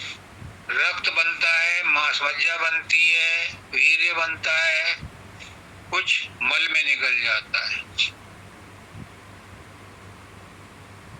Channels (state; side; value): identical; both; correlation 1.00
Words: रक्त बनता है, मांस मज्जा बनती है, वीर्य बनता है, कुछ मल में निकल जाता है।